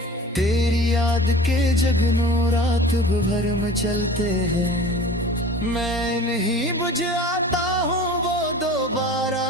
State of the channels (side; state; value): both; normal; correlation 0.41